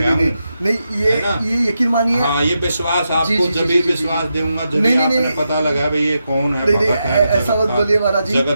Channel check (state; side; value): inverted; both; correlation -0.86